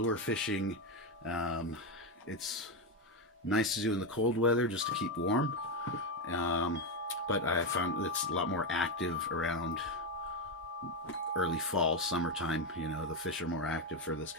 fishing. It's nice to do in the cold weather just to keep warm, but I found it's a lot more active around early fall, summertime. You know, the fish are more active for this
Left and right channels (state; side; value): normal; both; correlation 0.09